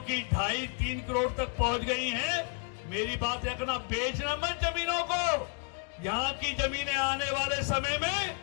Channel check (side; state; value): right; quieter; 34.5 dB